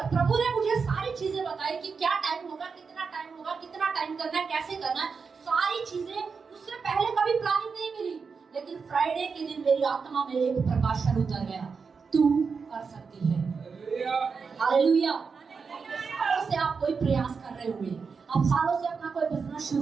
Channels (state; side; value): quieter; left; 5.3 dB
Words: प्रभु ने मुझे सारी चीजें बताई कि क्या टाइम होगा, कितना टाइम होगा, कितना टाइम करना है, कैसे करना है, सारी चीजें। उससे पहले कभी प्लानिंग नहीं मिली, लेकिन फ्राइडे के दिन मेरी आत्मा में एक प्रकाशन उतर गया, तू कर सकती है। हालेलुया। सालों से आप कोई प्रयास कर रहे होंगे, आप सालों से अपना कोई बिजनेस